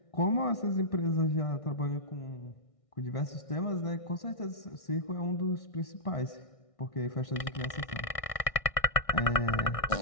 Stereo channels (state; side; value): late; right; 1.6 ms